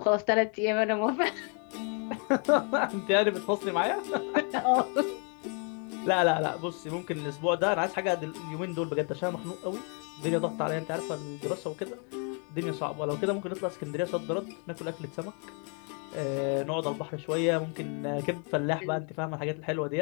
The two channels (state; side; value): quieter; right; 38.9 dB